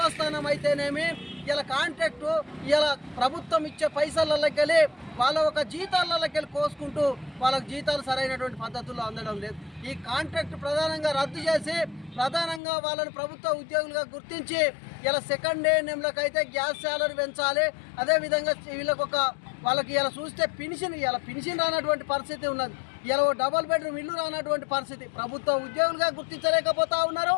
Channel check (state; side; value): drops out; right; at 12.6 s